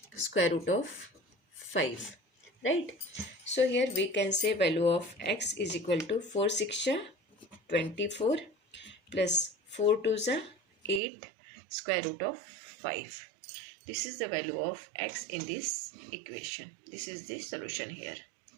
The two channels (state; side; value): drops out; left; at 11.0 s